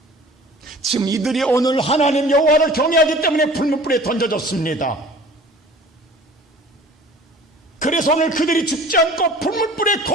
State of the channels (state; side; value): normal; both; correlation 0.46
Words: 지금 이들이 오늘 하나님 여호와를 경외하기 때문에 불문불에 던져졌습니다. 그래서 오늘 그들이 죽지 않고 불문불에